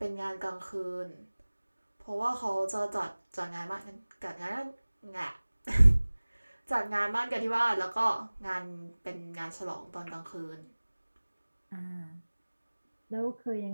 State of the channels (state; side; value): inverted; both; correlation -1.00